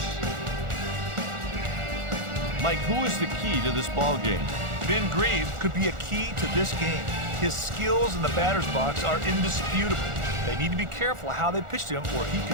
Mike, who is the key to this ball game? Ben Grieve could be a key to this game. His skills in the batter's box are indisputable. They need to be careful how they pitch to him, or he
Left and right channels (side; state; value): left; late; 1.4 ms